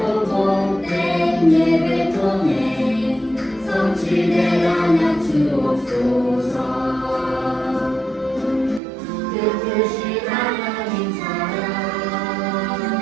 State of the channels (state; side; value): drops out; left; at 8.8 s